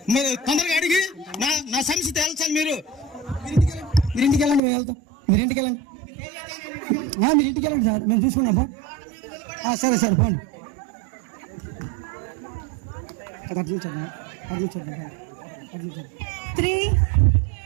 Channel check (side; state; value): left; drops out; at 4.6 s